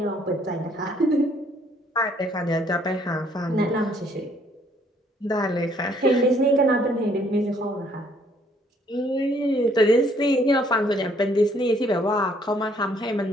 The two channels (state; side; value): normal; both; correlation 0.64